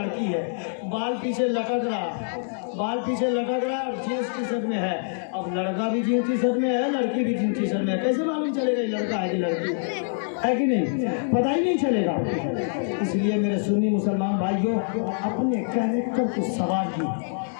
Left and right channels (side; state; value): right; silent; digital silence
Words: है। बाल पीछे लटक रहा और जींस टी शर्ट में है। अब लड़का भी जींस टी शर्ट में है, लड़की भी जींस टी शर्ट में है, कैसे मालूम चलेगा ये लड़का है कि लड़की है कि नहीं? पता ही नहीं चलेगा। इसलिए मेरे सुन्नी मुसलमान भाइयों, अपने कैरेक्टर को संवारिए,